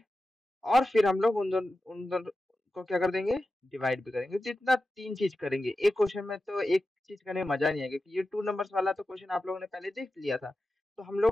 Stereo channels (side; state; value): both; normal; correlation 0.93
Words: और फिर हम लोग उन दोनों को क्या कर देंगे, डिवाइड भी करेंगे। तो इतना 3 चीज करेंगे एक क्वेश्चन में। तो एक चीज करने में मजा नहीं आएगा, क्योंकि ये 2 नंबर्स वाला तो क्वेश्चन आप लोगों ने पहले देख लिया था। तो हम